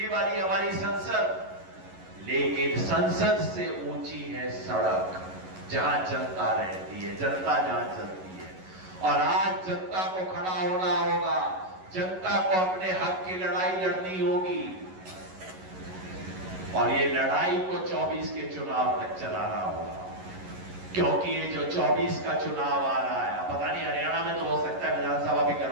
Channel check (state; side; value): late; left; 11 ms